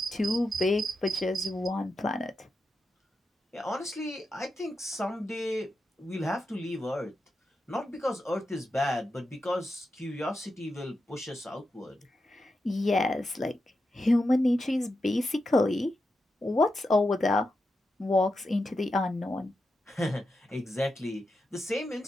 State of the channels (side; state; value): both; normal; correlation 0.88